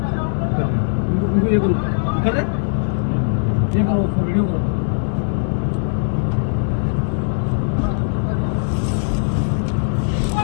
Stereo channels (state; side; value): silent; right; 64 dB below the other